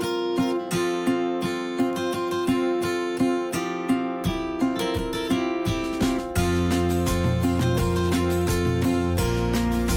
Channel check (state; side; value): identical; both; correlation 1.00